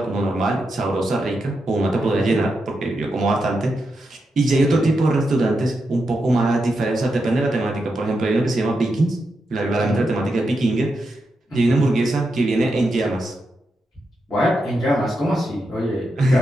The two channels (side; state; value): both; normal; correlation 0.86